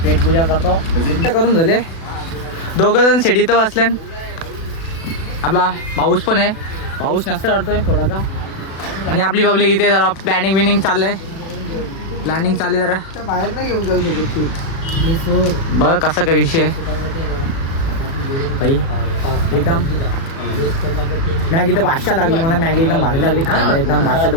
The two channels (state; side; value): late; right; 36 ms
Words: पेट पूजा करतो. करून झाले. 2 जण शेडीत बसल्या. आपला पाऊस पण आहे, पाऊस नसतं वाटतोय थोडासा. आणि आपली पब्लिक इथे जरा प्लॅनिंग चाललंय. प्लॅनिंग चालली जरा बाहेर नाही घेऊन जाऊ शकत. बघ कसा काय विषय भाई. एकदम मॅगी तर 500 लागली मला. मॅगी एकदम भारी लागली खायला, एकदम 500